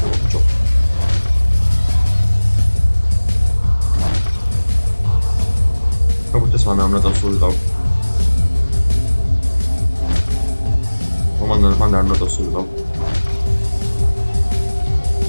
ce? Cum puteți să am dat sul tău? Mandar dat sul tău.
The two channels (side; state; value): both; inverted; correlation -1.00